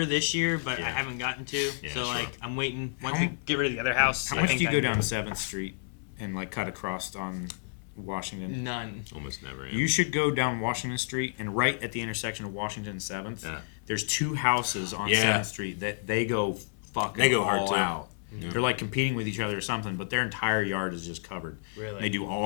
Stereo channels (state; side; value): silent; right; digital silence